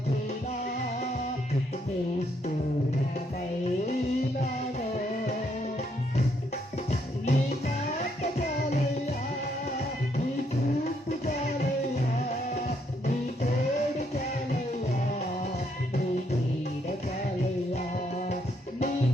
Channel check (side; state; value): both; normal; correlation 0.73